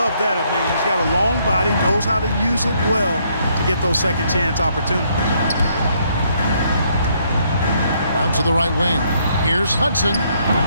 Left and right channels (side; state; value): both; inverted; correlation -0.70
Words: that. I mean, he's got a long body, knows how to use it well to get those second chance opportunities. Out to the right wing. Here's Hudson.